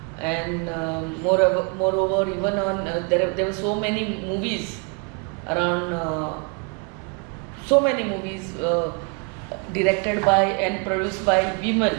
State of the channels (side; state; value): left; quieter; 33.2 dB